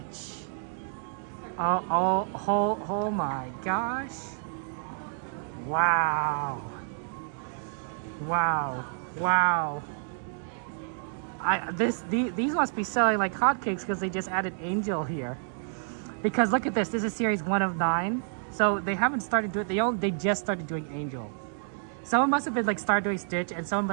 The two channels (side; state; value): left; silent; digital silence